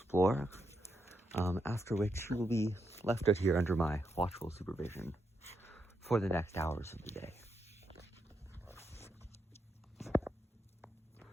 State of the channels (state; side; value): normal; both; correlation 0.82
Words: after which he will be left out here under my watchful supervision for the next hours of the day.